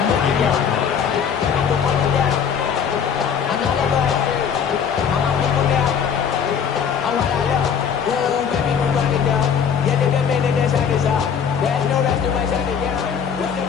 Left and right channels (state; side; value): quieter; right; 7.3 dB